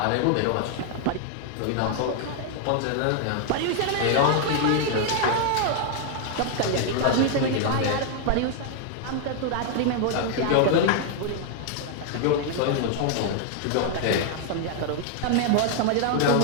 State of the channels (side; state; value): both; different; correlation 0.00